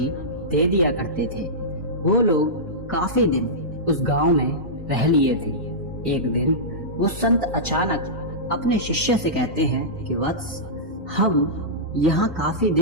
दे दिया करते थे। वो लोग काफी दिन उस गांव में रह लिए थे। एक दिन वो संत अचानक अपने शिष्य से कहते हैं कि वत्स, हम यहाँ काफी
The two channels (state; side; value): normal; both; correlation -0.14